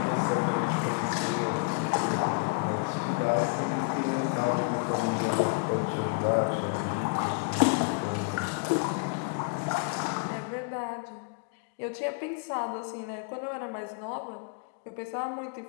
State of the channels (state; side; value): quieter; right; 34.7 dB